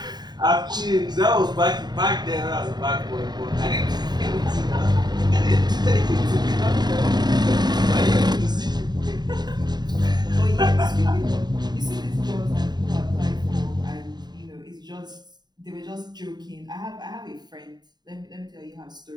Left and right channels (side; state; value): left; late; 0.20 ms